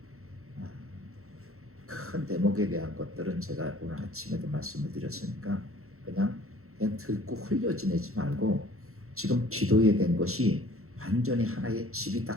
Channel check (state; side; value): late; left; 0.63 ms